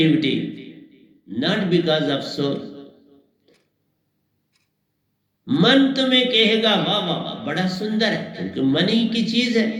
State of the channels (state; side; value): identical; both; correlation 1.00